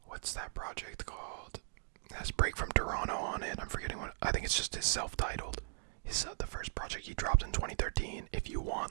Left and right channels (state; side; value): silent; left; digital silence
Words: what's that project called? It has Break from Toronto on it. I'm forgetting what, I think it's just his self-titled. The first project he dropped in 2013. If you